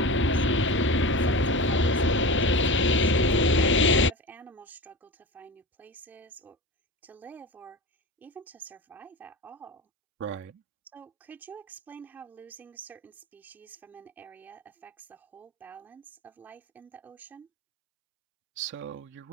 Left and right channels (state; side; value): normal; both; correlation 0.29